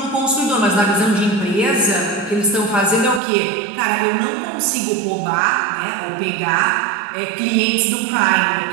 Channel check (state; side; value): drops out; left; at 3.2 s